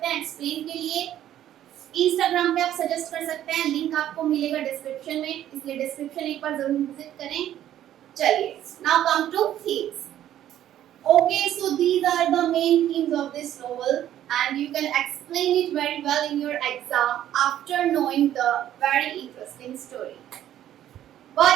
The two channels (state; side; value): quieter; left; 11.8 dB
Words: हैं एक्सप्लेन के लिए। इंस्टाग्राम पे आप सजेस्ट कर सकते हैं, लिंक आपको मिलेगा डिस्क्रिप्शन में, इसलिए डिस्क्रिप्शन एक बार जरूर विजिट करें। चलिए, now come to themes. Okay, so these are the main themes of this novel and you can explain it very well in your exam after knowing the very interesting story.